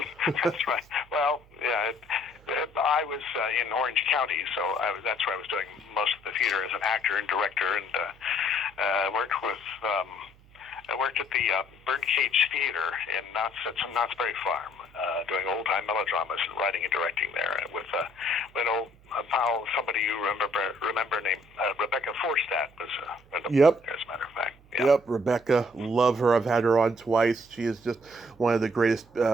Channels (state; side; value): noise; right; hum, 26 dB below the sound